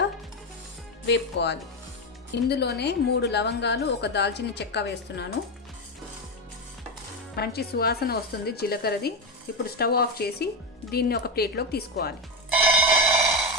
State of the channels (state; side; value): normal; both; correlation 0.11